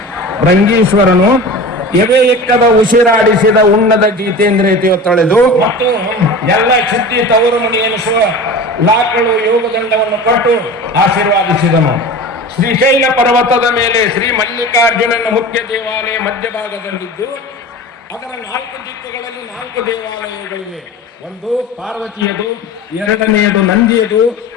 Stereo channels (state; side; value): normal; both; correlation 0.34